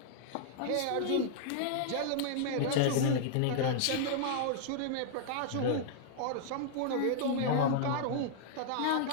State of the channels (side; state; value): both; different; correlation -0.01